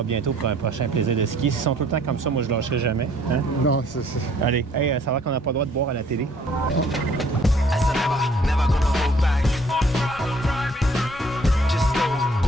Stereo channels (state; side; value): normal; both; correlation 0.60